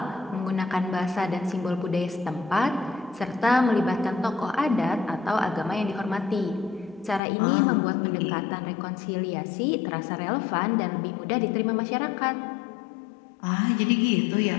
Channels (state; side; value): drops out; right; at 7.2 s